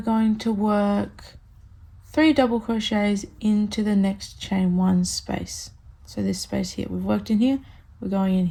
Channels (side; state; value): both; identical; correlation 1.00